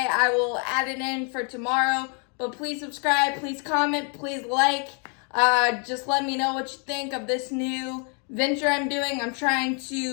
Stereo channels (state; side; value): quieter; right; 39.0 dB